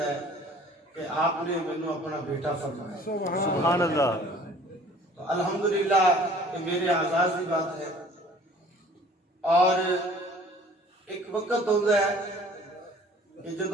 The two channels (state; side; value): normal; both; correlation 0.51